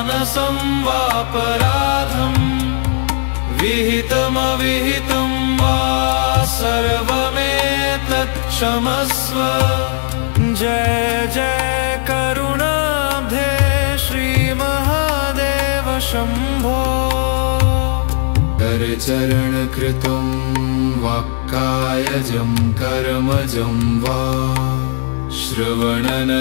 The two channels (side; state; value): right; silent; digital silence